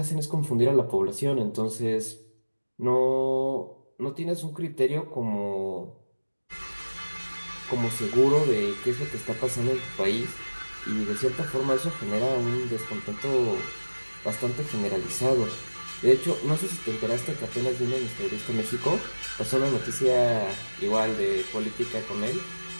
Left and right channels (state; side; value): inverted; both; correlation -1.00